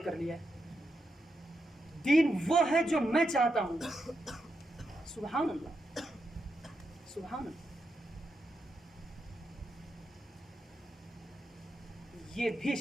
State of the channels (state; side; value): normal; both; correlation 0.85